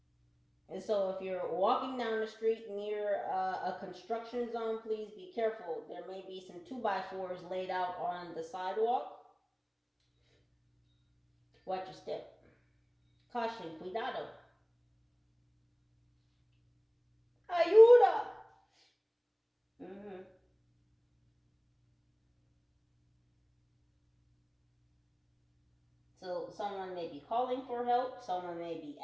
And so if you're walking down the street near a construction zone, please be careful. There may be some 2x4s laid out on the sidewalk. Watch your step. Caution, cuidado. Ayuda. So someone may be calling for help. Someone may be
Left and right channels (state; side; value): identical; both; correlation 1.00